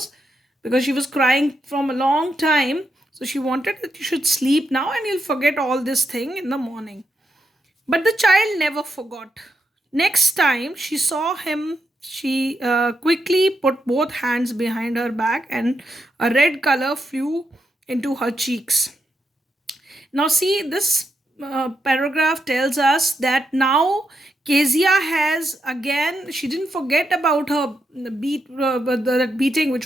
because she was crying from a long time. So she wanted that you should sleep now and you'll forget all this thing in the morning. But the child never forgot. Next time she saw him, she quickly put both hands behind her back and a red color flew into her cheeks. Now, see, this paragraph tells us that now Kezia has again, she didn't forget about her that beating which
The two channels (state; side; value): normal; both; correlation 0.83